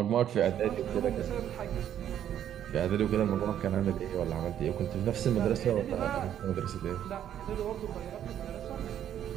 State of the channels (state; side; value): quieter; left; 10.3 dB